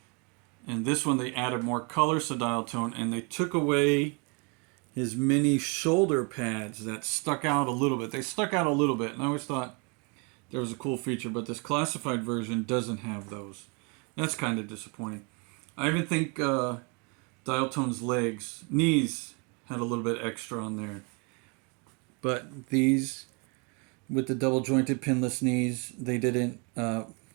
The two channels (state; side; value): quieter; left; 33.0 dB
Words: And this one they added more colors to Dial Tone, and they took away his mini shoulder pads that stuck out a little bit. They stuck out a little bit, and I always thought there was a cool feature, but this classified version doesn't have those. That's kind of disappointing. I even think Dial Tone's knees had a little bit extra on there. But these, with the double jointed pinless knees, they didn't